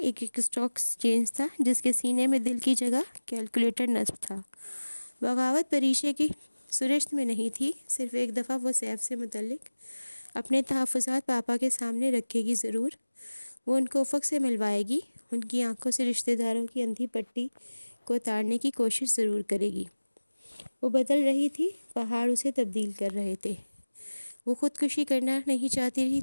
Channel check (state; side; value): inverted; both; correlation -1.00